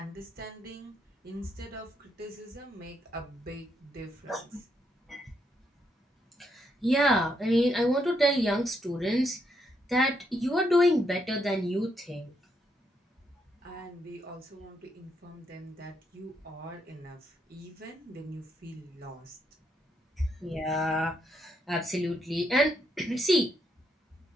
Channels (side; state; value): both; normal; correlation 0.77